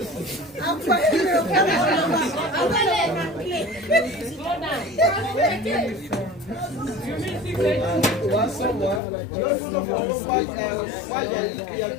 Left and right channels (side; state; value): right; drops out; at 9.0 s